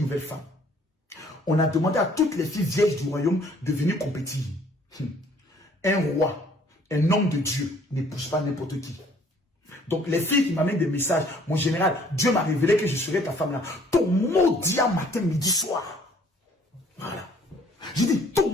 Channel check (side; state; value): both; normal; correlation 0.59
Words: nouvelle femme. On a demandé à toutes les filles vieilles du royaume de venir compétir. Un roi, un homme de Dieu, n'épouse pas n'importe qui. Donc les filles qui m'amènent des messages, mon général, Dieu m'a révélé que je serai ta femme là. Ton mot dit à matin, midi, soir. Voilà. J'ai dit, ton